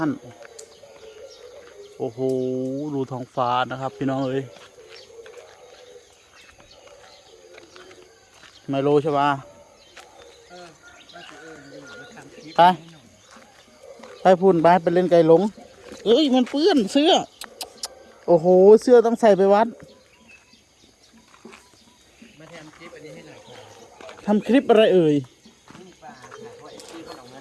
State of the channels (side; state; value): both; identical; correlation 1.00